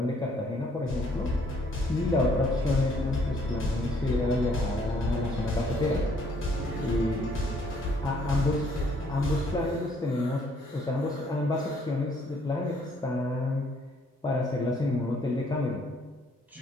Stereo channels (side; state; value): both; normal; correlation 0.65